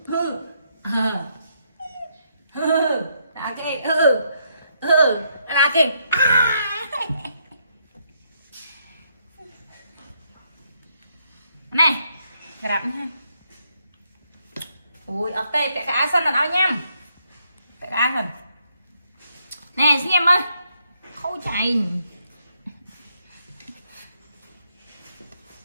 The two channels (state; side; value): inverted; both; correlation -0.75